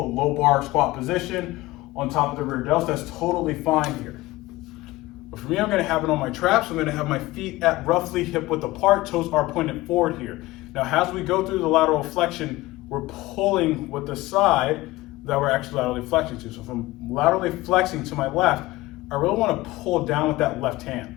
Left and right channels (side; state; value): right; quieter; 18.9 dB